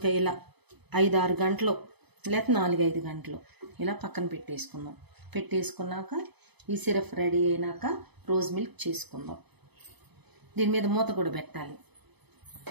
ఇలా 5-6 గంటలు లేకపోతే 4-5 గంటలు ఇలా పక్కన పెట్టేసుకున్నాక ఈ సిరప్ రెడీ అయినాక రోజ్ మిల్క్ చేసుకుందాం. దీని మీద మూత కూడా పెట్టాలి.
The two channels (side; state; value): left; late; 0.99 ms